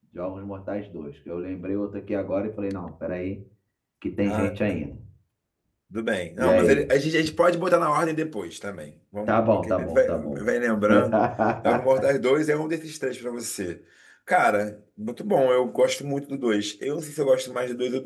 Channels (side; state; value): both; identical; correlation 1.00